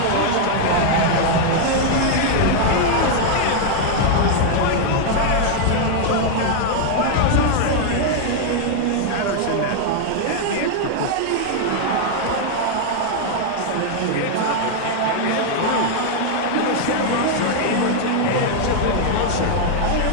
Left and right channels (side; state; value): both; different; correlation 0.00